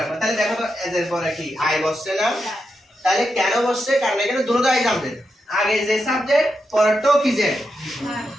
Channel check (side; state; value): both; normal; correlation 0.86